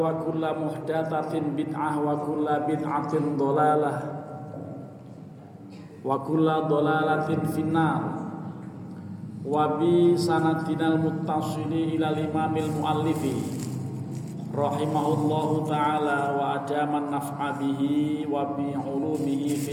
kullu muhdatsatin bid'ah wa kullu bid'atin dhalalah wa kullu dhalalatin finnar wa bi sanadinal muttasili ila imamil muallifi rahimahullahu ta'ala wa adaman naf'a bihi wa bi ulumihi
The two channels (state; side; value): identical; both; correlation 1.00